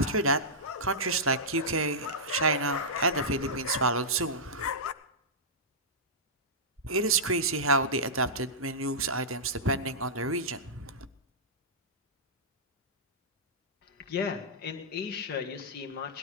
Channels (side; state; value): both; normal; correlation -0.14